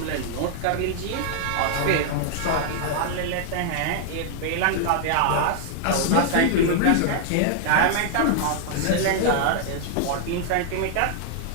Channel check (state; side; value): different; both; correlation 0.00